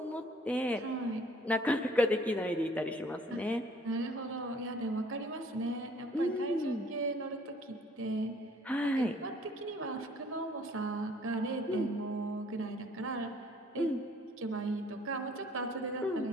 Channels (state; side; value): normal; both; correlation 0.58